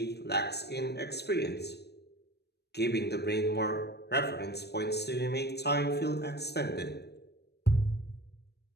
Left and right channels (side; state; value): right; late; 0.48 ms